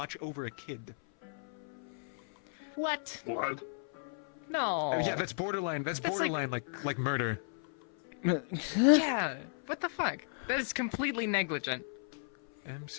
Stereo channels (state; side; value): silent; right; 55 dB below the other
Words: over a kid. What? What? No. Yeah, that's borderline. That's borderline like murder. Yeah. What the fuck? That is completely negligent.